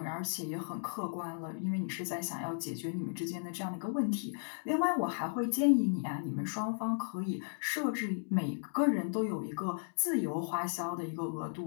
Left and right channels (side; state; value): right; silent; digital silence